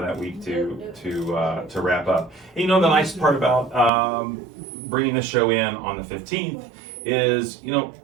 week to wrap up. And the nice part about bringing the show in on the 15th is,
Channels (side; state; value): left; drops out; at 3.9 s